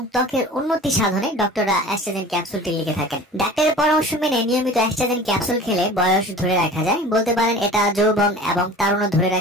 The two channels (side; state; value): both; normal; correlation 0.41